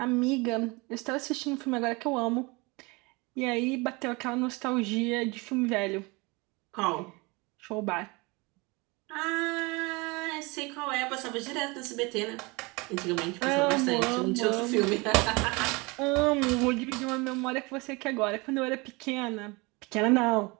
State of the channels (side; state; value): left; quieter; 26.2 dB